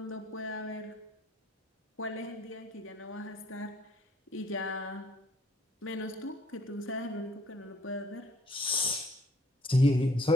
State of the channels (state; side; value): normal; both; correlation 0.61